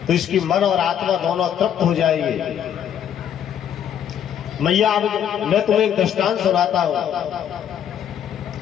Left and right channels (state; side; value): quieter; right; 9.3 dB